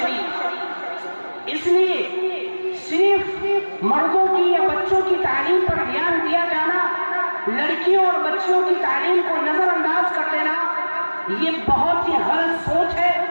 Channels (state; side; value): inverted; both; correlation -1.00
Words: اس لیے صرف مردوں کی یا بچوں کی تعلیم پر دھیان دیا جانا، لڑکیوں اور بچیوں کی تعلیم کو نظر انداز کر دینا، یہ بہت ہی غلط سوچ ہے۔